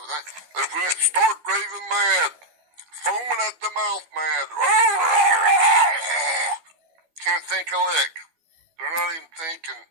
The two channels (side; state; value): left; late; 12 ms